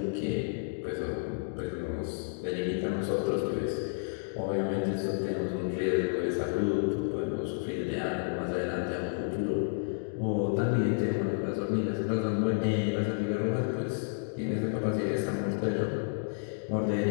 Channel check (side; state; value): right; silent; digital silence